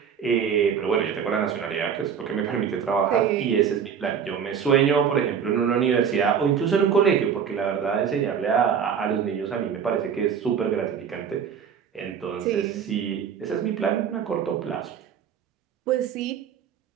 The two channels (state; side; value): quieter; left; 7.5 dB